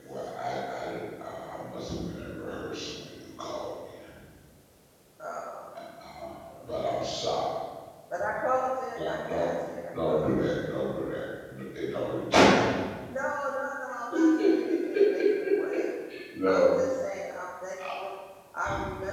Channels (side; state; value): both; identical; correlation 1.00